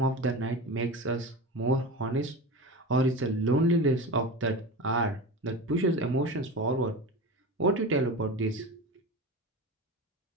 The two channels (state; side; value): normal; both; correlation 0.28